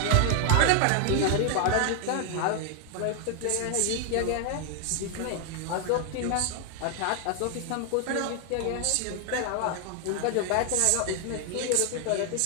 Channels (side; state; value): both; different; correlation 0.00